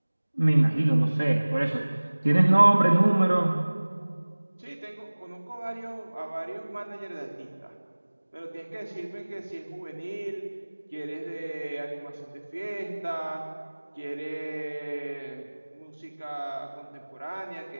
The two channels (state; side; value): inverted; both; correlation -1.00